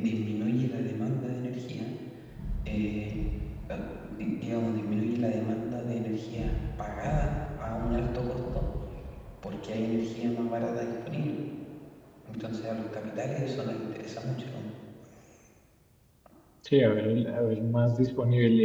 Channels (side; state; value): both; identical; correlation 1.00